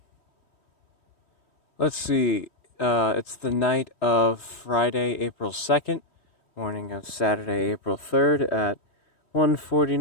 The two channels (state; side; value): late; right; 3.1 ms